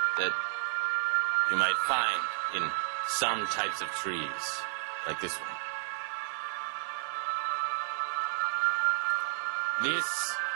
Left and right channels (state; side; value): silent; left; digital silence